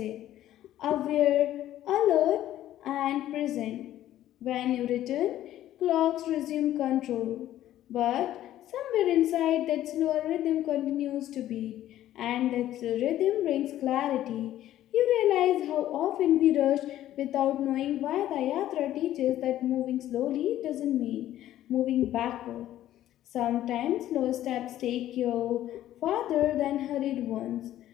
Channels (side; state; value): right; quieter; 13.0 dB